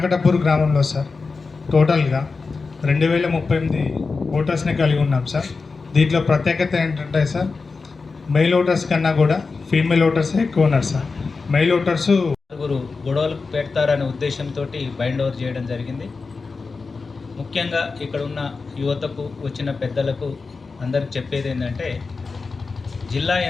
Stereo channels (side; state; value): right; quieter; 4.3 dB